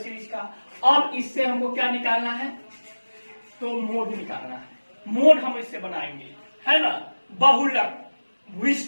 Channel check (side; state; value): both; inverted; correlation -1.00